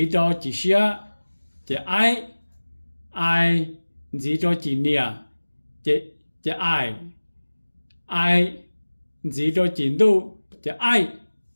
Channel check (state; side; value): inverted; both; correlation -1.00